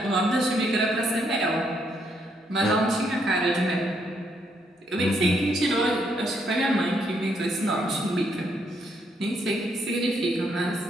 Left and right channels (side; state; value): both; normal; correlation 0.74